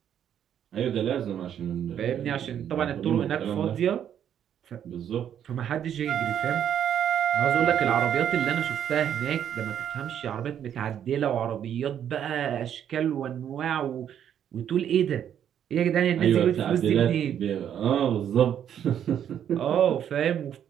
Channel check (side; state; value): left; quieter; 9.5 dB